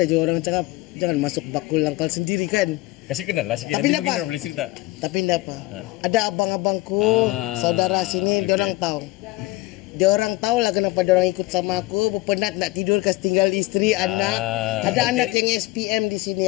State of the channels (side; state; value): right; quieter; 20.0 dB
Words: juga orang cakap, jangan masuk bakul langkal sendiri kan. Kasih kenal lah sikit, nanti mungkin orang boleh cerita. Tapi enggak apa. Ada abang-abangku, saudara sini, dia orang tahu. Dia orang tahu lah kenapa dia orang ikut sama aku. Penat nak tidur, kasih tinggal istri, anak. Ada anak yang SPM di